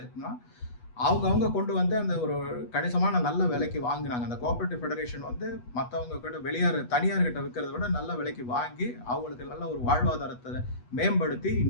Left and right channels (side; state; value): right; late; 8.2 ms